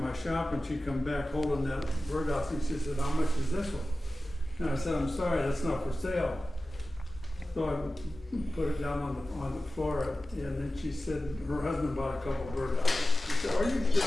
my shop and she come back holding that birdhouse and she said, how much is this one? And I said, I'm sorry, that's not for sale. So I put it down on the floor and then she said her husband bought a couple birdhouses. She said, are you sure?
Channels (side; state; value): both; normal; correlation 0.96